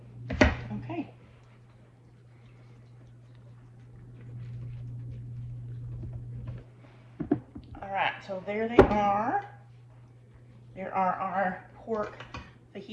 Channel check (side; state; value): both; identical; correlation 1.00